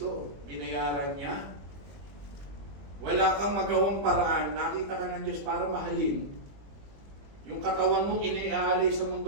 Binayaran niya. Wala kang magawang paraan. Nakita ka ng Diyos para mahalin. Yung katawan mong iniaalay sa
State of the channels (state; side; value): late; left; 21 ms